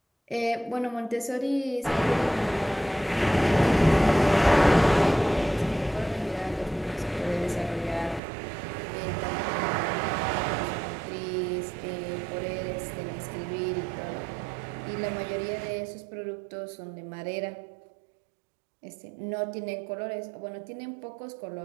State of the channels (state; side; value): drops out; left; at 8.2 s